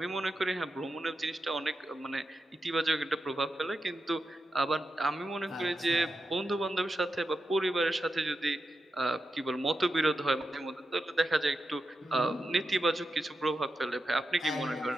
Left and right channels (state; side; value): normal; both; correlation 0.88